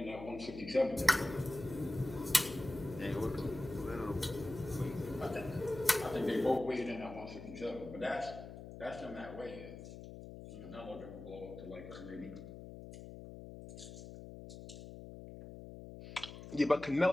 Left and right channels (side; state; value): left; noise; hum, 12 dB below the sound